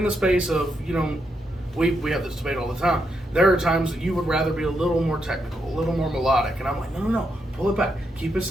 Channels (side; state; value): both; normal; correlation 0.81